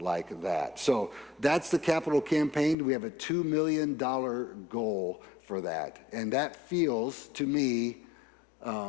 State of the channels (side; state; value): right; drops out; at 2.8 s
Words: that. So that's the capital campaign. We have a $2 million goal for that. And that feels, to me,